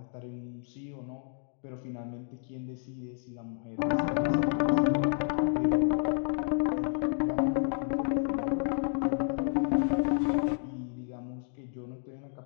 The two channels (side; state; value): right; silent; 57 dB below the other